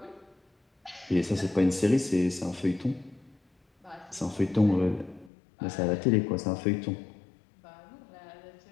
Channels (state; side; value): drops out; right; at 5.3 s